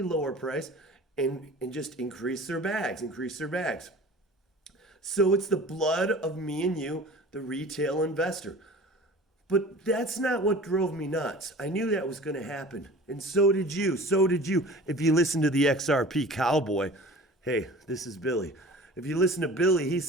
lower price and just increase their bags. So it's the blood of me and you, the retail investor. But that's not what drove me nuts. I knew that was going to happen. And so did you. If you listen to the XRP Cowboy, hey, this is Billy. If you listen to Billy, he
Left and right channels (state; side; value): normal; both; correlation 0.42